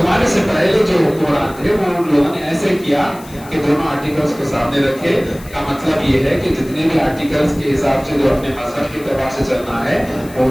سے پہلے جو حکمران تھے وہ ان لوگوں نے ایسے کیا کہ دونوں آرٹیکلز کو سامنے رکھے. کا مطلب یہ ہے کہ جتنے بھی آرٹیکلز کے حساب سے جو اپنے مذہب کے اعتبار سے چلنا ہے وہ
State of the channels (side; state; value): left; noise; hiss, 20 dB below the sound